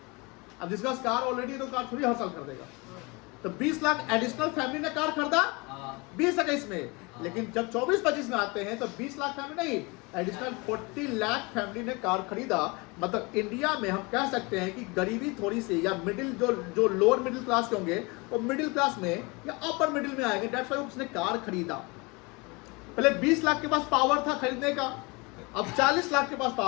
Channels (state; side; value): quieter; right; 27.2 dB